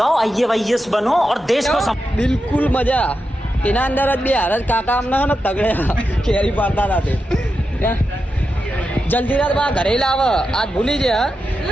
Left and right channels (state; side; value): normal; both; correlation 0.88